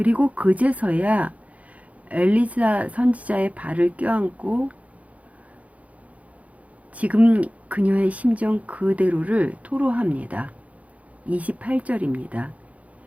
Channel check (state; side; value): late; left; 0.067 ms